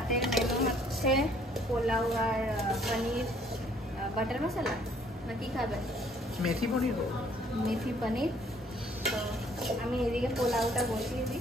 মেনু হচ্ছে পোলাও আর পনির বাটার মশলা, না কি খাবেন? মেথি পনির। মেথি পনির। তো আমি এদিকে পোলাওটা বসিয়ে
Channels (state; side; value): normal; both; correlation 0.61